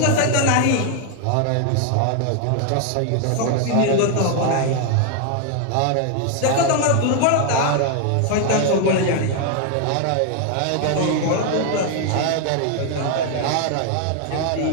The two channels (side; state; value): both; different; correlation 0.00